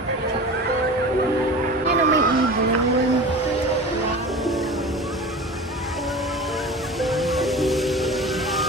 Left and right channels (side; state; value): both; normal; correlation 0.35